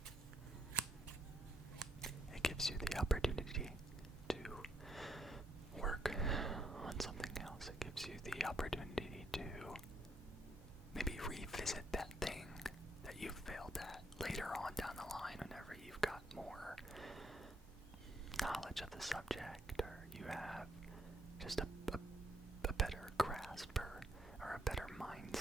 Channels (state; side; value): normal; both; correlation 0.74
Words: It gives you the opportunity to work on something else. It gives you the opportunity to maybe revisit that thing that you failed at later on down the line whenever you've got more knowledge of the subject, or you have just a better grasp or a better